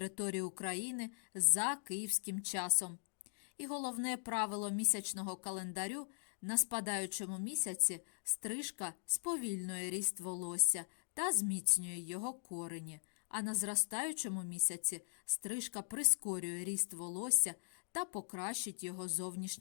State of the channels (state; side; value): silent; right; digital silence